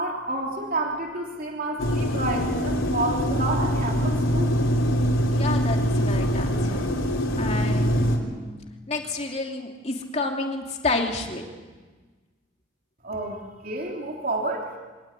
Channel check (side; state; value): both; normal; correlation 0.46